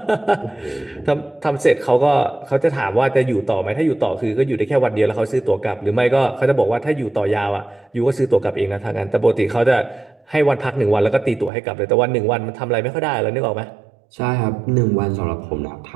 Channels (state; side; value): drops out; left; at 11.5 s